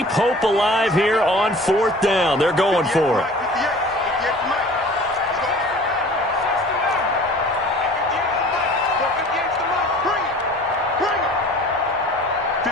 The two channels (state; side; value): normal; both; correlation 0.45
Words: hope alive here on 4th down. They're going for it.